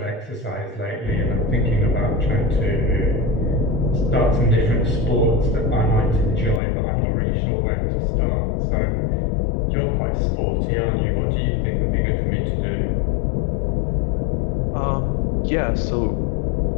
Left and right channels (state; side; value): drops out; right; at 6.6 s